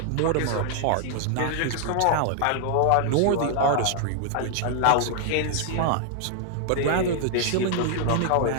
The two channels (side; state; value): both; different; correlation 0.00